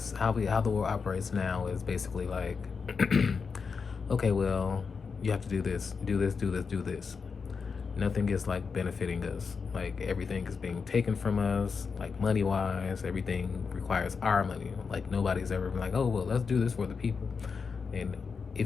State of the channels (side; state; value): right; quieter; 5.4 dB